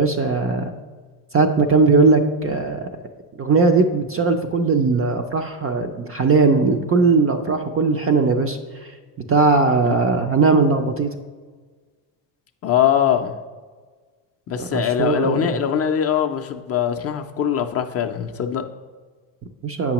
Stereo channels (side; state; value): both; normal; correlation 0.01